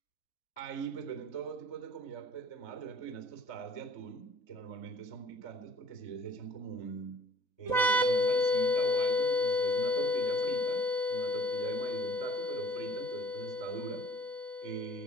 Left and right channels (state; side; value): late; right; 4.1 ms